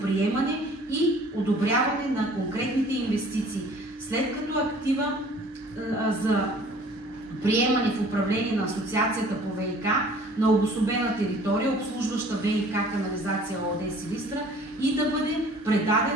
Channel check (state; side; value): normal; both; correlation 0.52